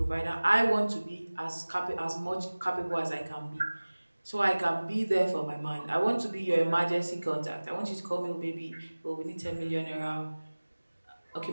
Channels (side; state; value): both; inverted; correlation -1.00